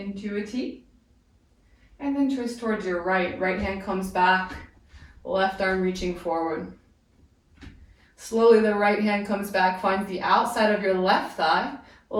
a T. And then twist towards your right. Right hand comes back. Left arm reaching forward. Slowly the right hand comes back, finds the outside of your left thigh.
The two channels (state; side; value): identical; both; correlation 1.00